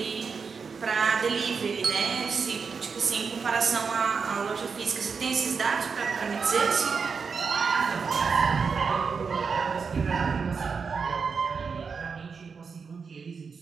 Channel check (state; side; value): quieter; left; 5.5 dB